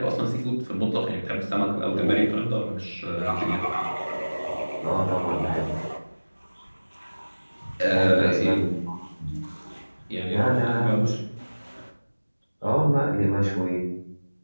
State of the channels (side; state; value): both; inverted; correlation -1.00